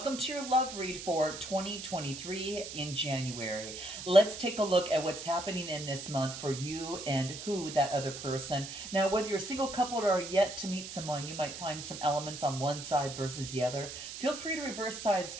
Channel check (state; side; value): noise; right; hiss, 9 dB below the sound